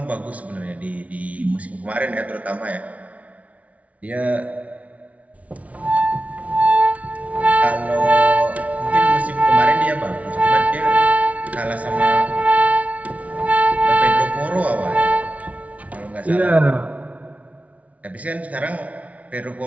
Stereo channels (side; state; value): left; late; 0.067 ms